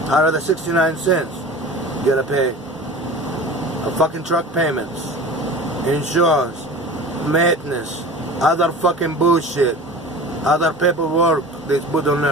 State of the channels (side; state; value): both; normal; correlation 0.37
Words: Out of the 69 cents, you gotta pay a fucking truck payments, insurance, maintenance, other fucking bullshit, other paperwork they put on